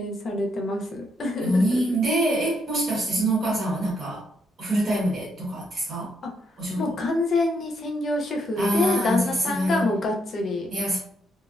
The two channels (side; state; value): both; normal; correlation 0.76